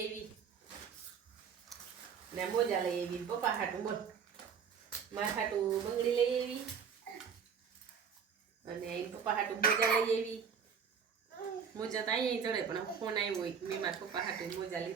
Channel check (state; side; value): quieter; left; 6.9 dB